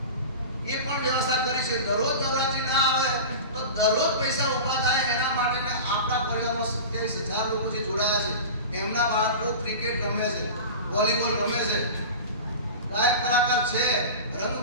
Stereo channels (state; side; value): inverted; both; correlation -0.31